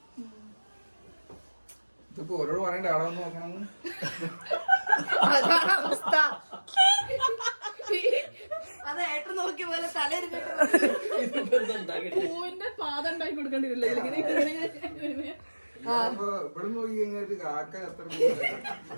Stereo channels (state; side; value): inverted; both; correlation -1.00